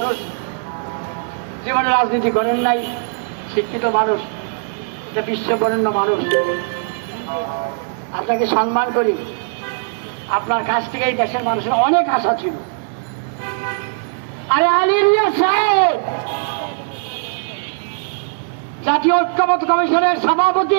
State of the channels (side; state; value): left; silent; digital silence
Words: জীবনে রাজনীতি করেন নাই, শিক্ষিত মানুষ, একটা বিশ্ববরেণ্য মানুষ, আপনাকে সম্মান করি। আপনার কাছ থেকে এই দেশের মানুষের অনেক আশা ছিল। আরে আলী রিয়াজ সাহেব জাতীয় ঐক্যমত্য কমিশনের